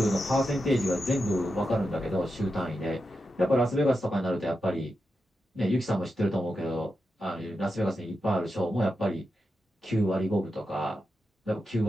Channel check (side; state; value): both; normal; correlation 0.88